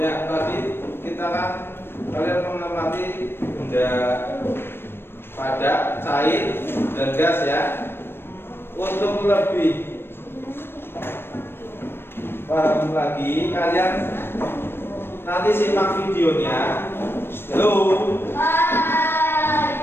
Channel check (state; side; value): late; right; 0.11 ms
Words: tadi kita kan kalian mengamati benda padat, cair, dan gas ya. Untuk lebih paham lagi, kalian nanti simak videonya. Halo.